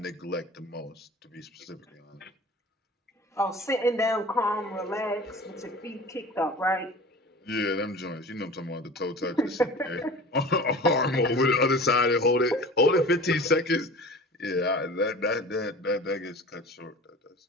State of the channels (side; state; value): both; normal; correlation 0.39